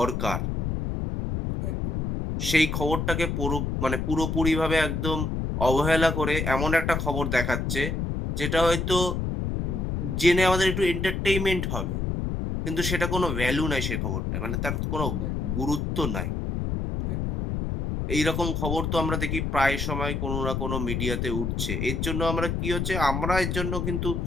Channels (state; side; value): noise; left; rumble, 1 dB below the sound